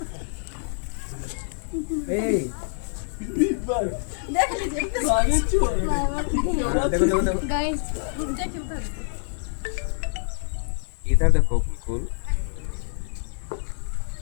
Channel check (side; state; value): right; silent; digital silence